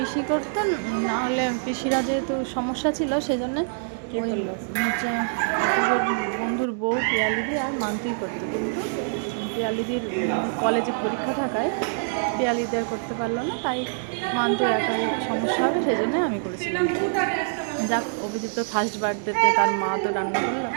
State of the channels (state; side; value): silent; left; digital silence